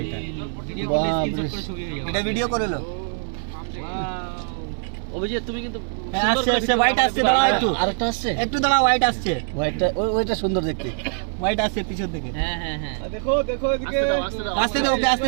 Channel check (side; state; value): left; silent; 62 dB below the other